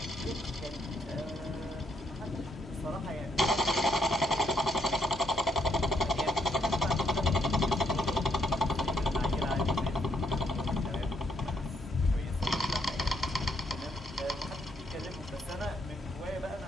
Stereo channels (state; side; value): normal; both; correlation 0.74